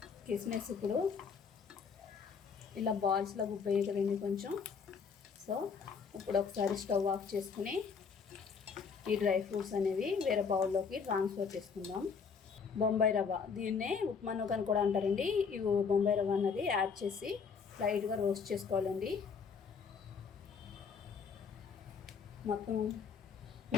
కిస్మిస్ ఇప్పుడు ఇలా బాల్స్లో గుబ్బయ్యాయి కదండి కొంచెం. సో ఇప్పుడు ఒకసారి స్టవ్ ఆఫ్ చేసుకుని ఈ డ్రై ఫ్రూట్స్ అనేవి వేరే బౌల్లోకి ట్రాన్స్ఫర్ చేసుకుందాం. బొంబాయి రవ్వ, దీన్నే ఉప్మా నూక అని కూడా అంటారండి. ఈ బొంబాయి రవ్వ అన్నది యాడ్ చేసి లైట్గా రోస్ట్ చేసుకోవాలండి. మొత్తం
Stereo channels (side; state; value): right; quieter; 5.8 dB